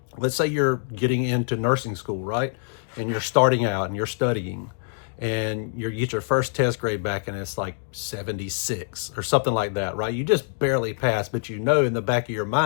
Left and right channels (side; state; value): right; silent; digital silence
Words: let's say you're getting into nursing school, right? And you're starting out and you're studying and you get your first test grade back and it's like 76 or something like that, right? You just barely passed, but you know in the back of your